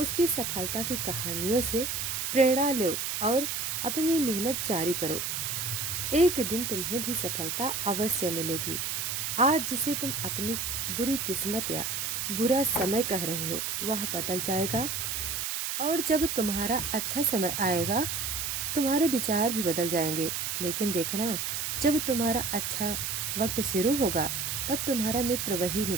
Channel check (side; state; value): right; noise; hiss, 2 dB below the sound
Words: सफलता की कहानियों से प्रेरणा लो और अपनी मेहनत जारी करो। एक दिन तुम्हें भी सफलता अवश्य मिलेगी। आज जिसे तुम अपनी बुरी किस्मत या बुरा समय कह रहे हो, वह बदल जाएगा और जब तुम्हारा अच्छा समय आएगा, तुम्हारे विचार भी बदल जाएंगे। लेकिन देखना, जब तुम्हारा अच्छा वक्त शुरू होगा, तब तुम्हारा मित्र, वही